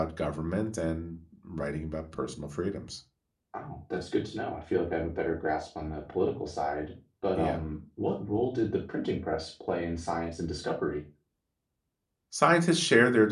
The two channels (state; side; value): identical; both; correlation 1.00